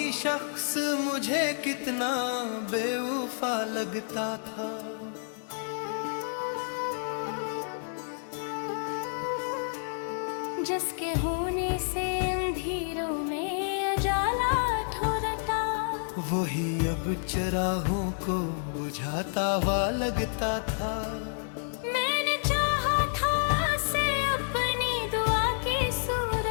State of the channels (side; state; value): right; silent; 58 dB below the other